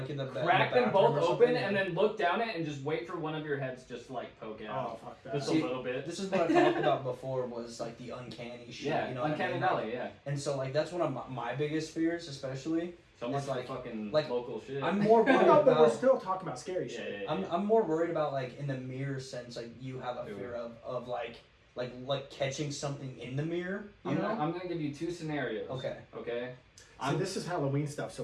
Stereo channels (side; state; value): both; identical; correlation 1.00